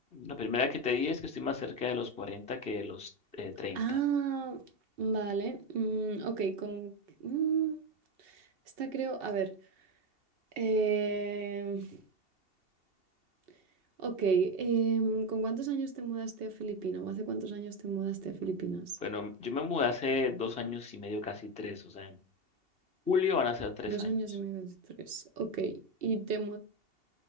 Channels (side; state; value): left; late; 2.7 ms